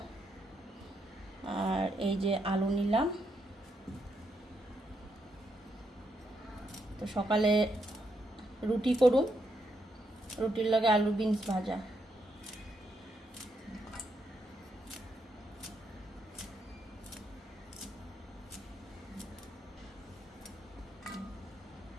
আর এই যে আলু নিলাম। তো সকালে রুটি করুম, রুটির লগে আলু বিনস ভাজা।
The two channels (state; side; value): normal; both; correlation 0.79